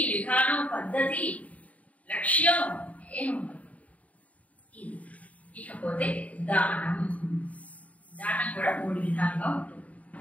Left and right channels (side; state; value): right; late; 0.069 ms